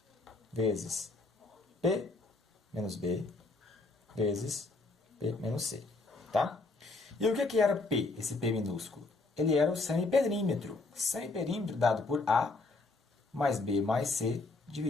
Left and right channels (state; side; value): quieter; right; 3.5 dB